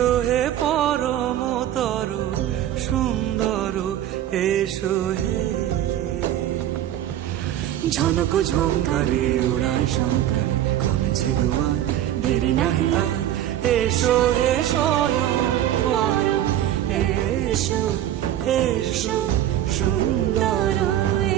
হে পরমতর সুন্দর, এসো হে। ঝনক ঝঙ্কারে উড়ায় শঙ্কারে কমেছে দুয়ার, দেরি নাহি আর। এসো হে স্বয়ং পরম, এসো এসো সুন্দর,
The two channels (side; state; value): left; quieter; 12.0 dB